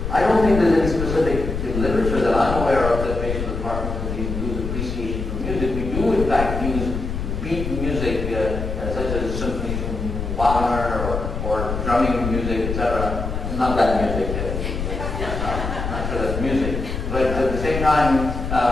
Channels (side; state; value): left; noise; rumble, 4 dB below the sound